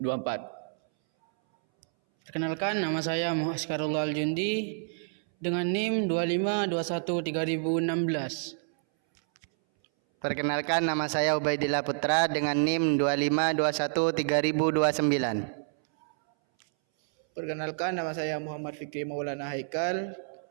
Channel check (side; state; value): left; silent; 59 dB below the other